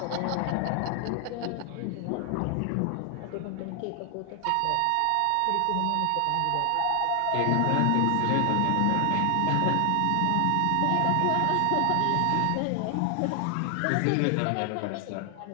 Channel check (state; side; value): different; both; correlation 0.00